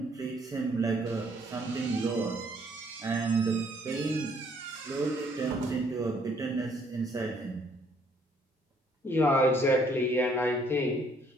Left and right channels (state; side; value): normal; both; correlation 0.65